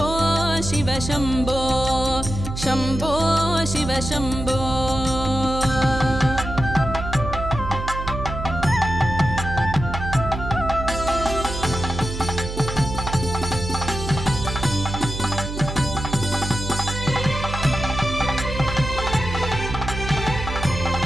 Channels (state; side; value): noise; right; hum, 6 dB below the sound